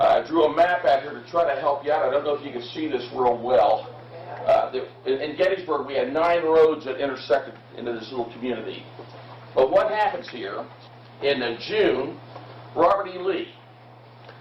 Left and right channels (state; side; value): identical; both; correlation 1.00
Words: drew a map out here to try to help you out. I don't know if you can see this real well. In Gettysburg, we had 9 roads that intersected into this little community. But what happens here, in June, Robert E. Lee,